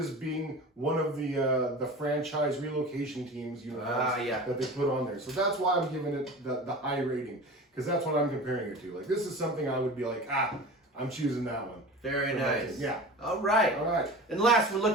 being one of the franchise relocation teams that they put on there. So that's why I'm giving it the high rating, because that's what I'm comparing it to. Like, this is something I would be like, I'm choosing that one. Very nice. Yeah. All right. And last, we're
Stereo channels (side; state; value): both; normal; correlation 0.35